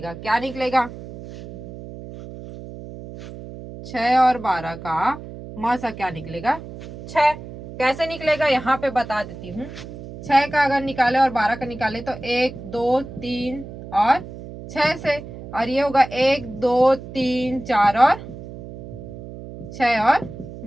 क्या निकलेगा, 6 और 12 का मसा क्या निकलेगा 6। कैसे निकलेगा यहाँ पे बता देती हूँ। 6 का अगर निकाले और 12 का निकाले तो 1 2 3 और 6 से, और ये होगा 1 2 3 4 और 6 और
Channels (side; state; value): right; noise; hum, 13 dB below the sound